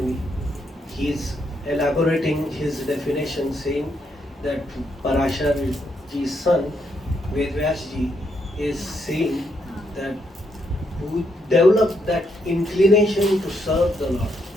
he is elaborating his definition saying that Parashar ji's son, Vedvyas ji, is saying that who developed that inclination to serve the Lord.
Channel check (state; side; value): normal; both; correlation 0.77